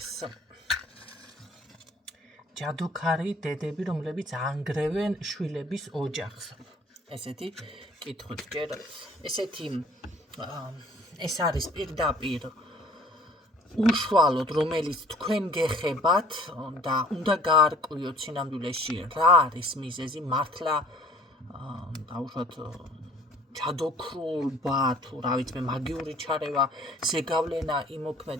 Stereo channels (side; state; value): both; normal; correlation 0.53